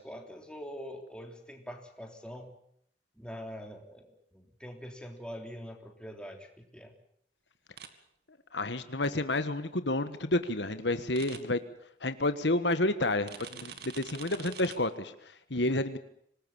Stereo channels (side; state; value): both; normal; correlation 0.14